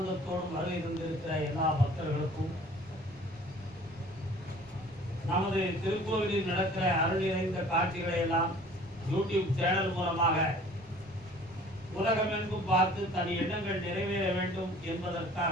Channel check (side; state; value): both; normal; correlation 0.50